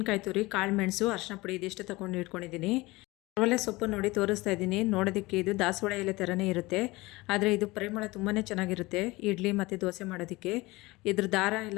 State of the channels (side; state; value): right; quieter; 21.5 dB